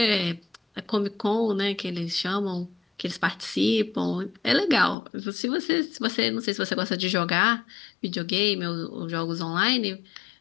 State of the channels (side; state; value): right; drops out; at 5.0 s